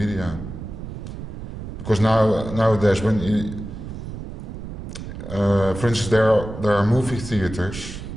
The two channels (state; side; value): noise; right; rumble, 9 dB below the sound